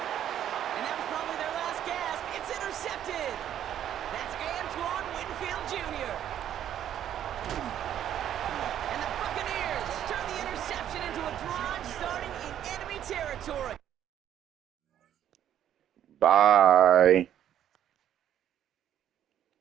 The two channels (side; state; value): left; quieter; 10.6 dB